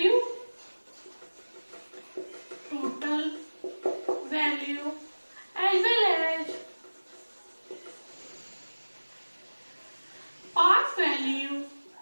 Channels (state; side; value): inverted; both; correlation -1.00